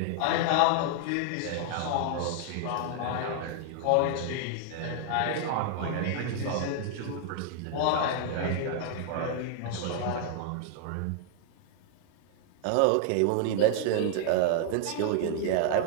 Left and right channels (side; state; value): both; different; correlation 0.00